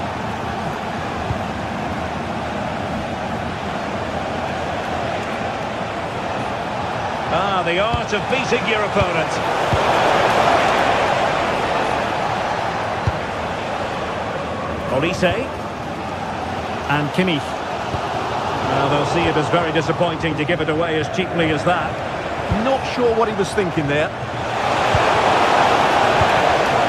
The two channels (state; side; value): identical; both; correlation 1.00